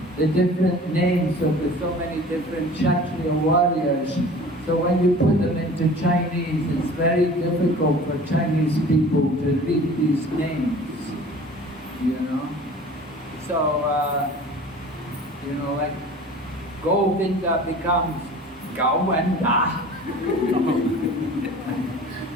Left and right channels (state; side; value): normal; both; correlation 0.43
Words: the different names of the so many different Kshatriya warriors. So when you put them into Chinese, it's very difficult for Chinese people to read these names, So, like Govinda becomes Govinda.